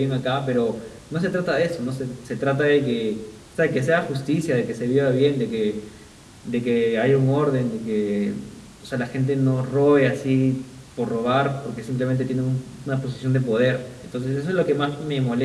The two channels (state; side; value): identical; both; correlation 1.00